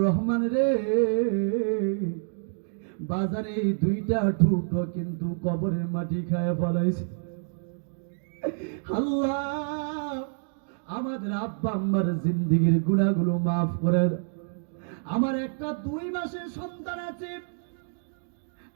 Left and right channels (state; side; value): silent; left; digital silence